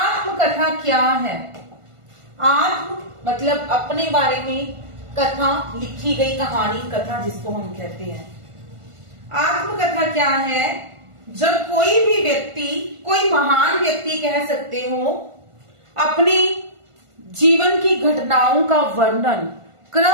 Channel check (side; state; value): left; late; 1.5 ms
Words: क्या है? आत्म मतलब अपने बारे में, कथा लिखी गई कहानी, कथा जिसको हम कहते हैं। आत्मकथा क्या है? जब कोई भी व्यक्ति, कोई महान व्यक्ति कह सकते हो, अपनी जीवन की घटनाओं का वर्णन